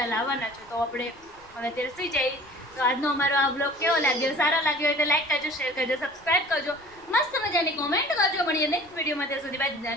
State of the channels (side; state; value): left; noise; rumble, 28 dB below the sound